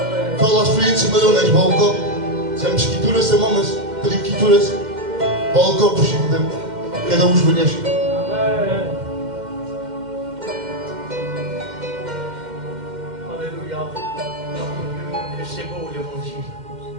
Fala a experiência, mas eu não és balcão. Temos escrituras, temos mamas, temos escrituras. Balcão por Chico Deus. Cada um os conhece. Alléluia. Que c'est beau l'évangile.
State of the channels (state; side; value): late; left; 2.1 ms